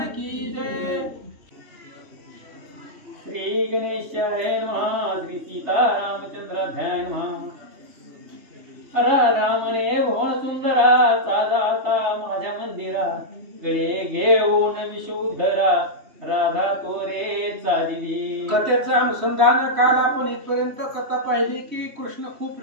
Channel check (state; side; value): late; left; 3.3 ms